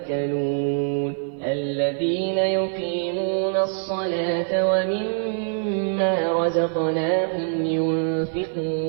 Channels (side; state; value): left; silent; 55 dB below the other